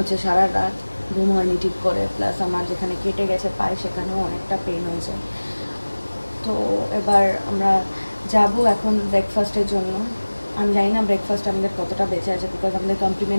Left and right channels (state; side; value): inverted; both; correlation -1.00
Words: সারা রাত ঘুম হয়নি ঠিক করে, প্লাস আমার যেখানে কেটে গেছে পায়ে সেখানেও অনেকটা পেন হয়েছে। তো এবার আমরা যাব এখন ব্রেকফাস্টের জন্য। আমি জানি না ব্রেকফাস্ট আমাদের কতটা বেঁচে আছে, বিকজ আমাদের